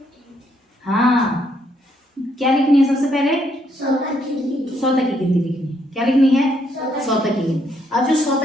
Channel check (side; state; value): both; normal; correlation 0.73